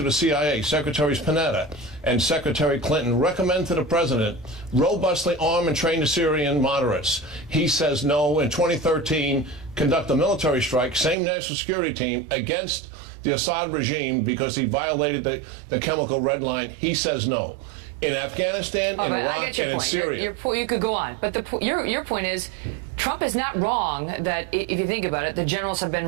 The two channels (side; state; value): left; drops out; at 11.2 s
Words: of the CIA, Secretaries Panetta, and Secretary Clinton recommend to the president robustly arm and train the Syrian moderates. He says no. In 2013, conduct a military strike, same national security team, against the Assad regime because he violated the chemical red line. He says no. In Afghanistan, in Iraq, and in Syria. You could go on, but your point is, Trump is not wrong that, if you think about it, the generals have been